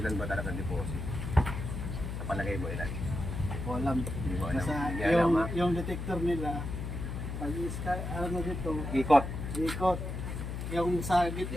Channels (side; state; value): left; noise; hum, 5 dB below the sound